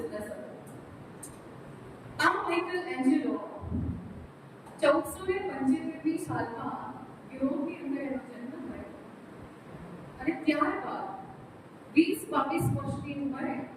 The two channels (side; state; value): both; identical; correlation 1.00